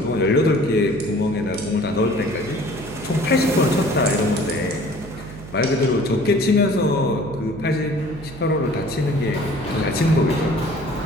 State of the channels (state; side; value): noise; right; hum, 15 dB below the sound